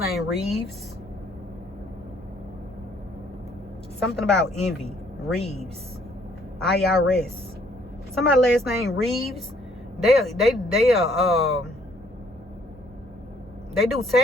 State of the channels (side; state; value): both; normal; correlation 0.64